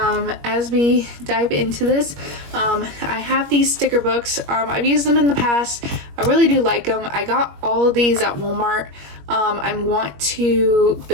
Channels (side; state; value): left; late; 21 ms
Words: we dive into this, I have these sticker books. I've used them in the past. I really do like them. I got all of these at Walmart. I want to